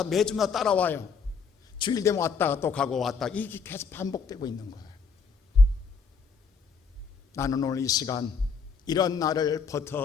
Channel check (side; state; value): right; quieter; 5.3 dB